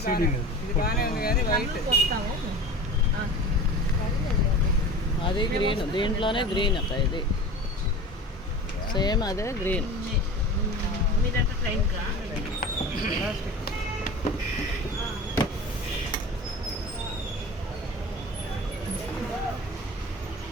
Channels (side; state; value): both; normal; correlation 0.36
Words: ఇది బాగానే ఉంది కానీ వైట్ వస్తాము. అది గ్రీన్, దీంట్లోనే గ్రీన్ అక్క. ఇది సేమ్ అదే గ్రీన్. మీరంటే ట్రైన్కా?